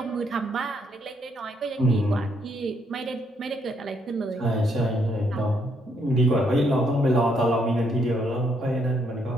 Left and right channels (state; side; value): normal; both; correlation 0.73